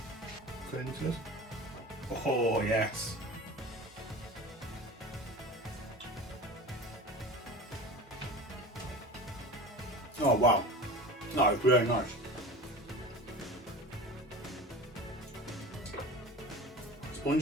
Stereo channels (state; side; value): normal; both; correlation 0.34